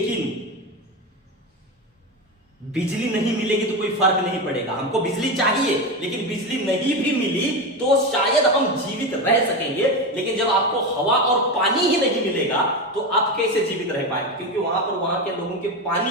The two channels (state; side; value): normal; both; correlation 0.18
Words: बिजली नहीं मिलेगी तो कोई फर्क नहीं पड़ेगा। हमको बिजली चाहिए, लेकिन बिजली नहीं भी मिली तो शायद हम जीवित रह सकेंगे, लेकिन जब आपको हवा और पानी ही नहीं मिलेगा तो आप कैसे जीवित रह पाएंगे? क्योंकि वहां पर वहां के लोगों के